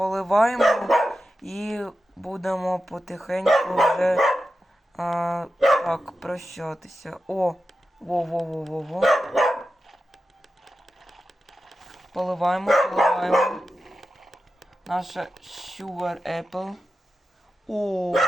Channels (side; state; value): both; normal; correlation 0.91